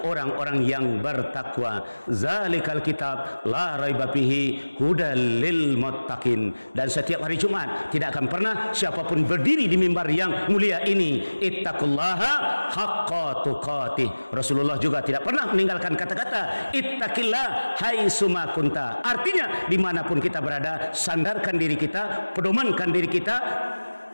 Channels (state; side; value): inverted; both; correlation -1.00